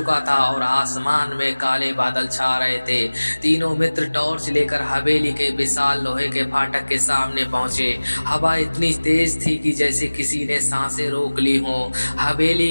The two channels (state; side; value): inverted; both; correlation -1.00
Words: था और आसमान में काले बादल छा रहे थे। तीनों मित्र टॉर्च लेकर हवेली के विशाल लोहे के फाटक के सामने पहुंचे। हवा इतनी तेज थी कि जैसे किसी ने सांसें रोक ली हो।